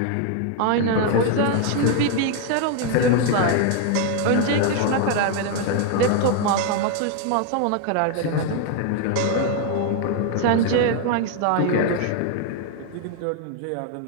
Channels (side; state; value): both; different; correlation 0.00